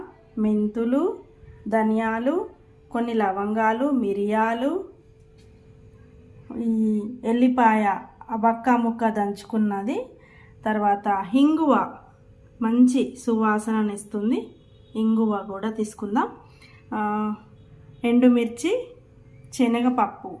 మెంతులు, ధనియాలు, కొన్ని లవంగాలు, మిరియాలు, ఈ ఎల్లిపాయ వక్క ముక్క దంచుకున్నది, తర్వాత ఇంగువ మంచి సువాసననిస్తుంది, ఇంగువ కూడా తీసుకుందాం. ఎండుమిర్చి, శనగపప్పు,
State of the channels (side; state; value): both; identical; correlation 1.00